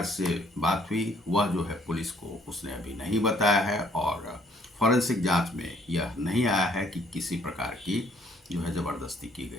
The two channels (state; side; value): normal; both; correlation 0.63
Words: से बात हुई, वह जो है पुलिस को उसने अभी नहीं बताया है और फॉरेंसिक जांच में यह नहीं आया है कि किसी प्रकार की जो है ज़बरदस्ती की